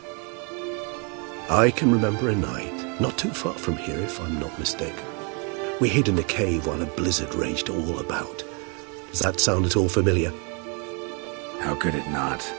I can remember a night, not too far from here if I'm not mistaken. We hid in a cave while a blizzard raged all about. Does that sound at all familiar? How could it not?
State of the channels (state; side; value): quieter; left; 35.4 dB